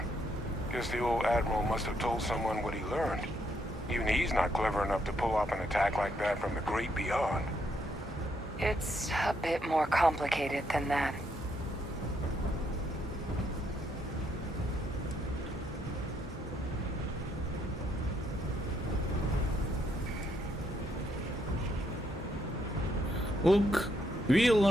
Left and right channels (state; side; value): normal; both; correlation 0.74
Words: Guess the old Admiral must have told someone what he learned. Even he's not clever enough to pull off an attack like that from the great beyond. It's a bit more complicated than that. Look, we